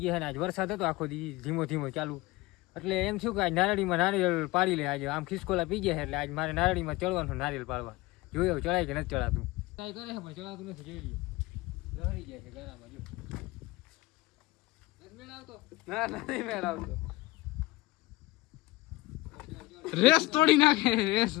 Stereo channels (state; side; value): quieter; right; 19.9 dB